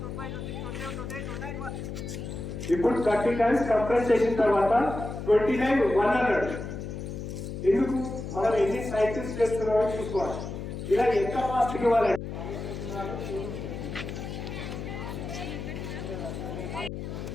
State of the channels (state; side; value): noise; left; hum, 7 dB below the sound